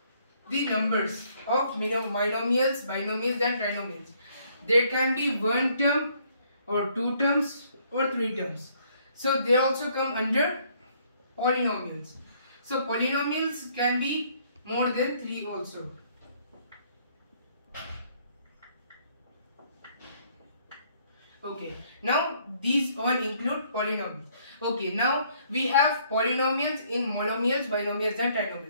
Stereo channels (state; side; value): inverted; both; correlation -0.65